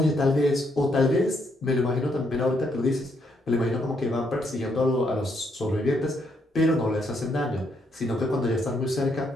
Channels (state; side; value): normal; both; correlation 0.75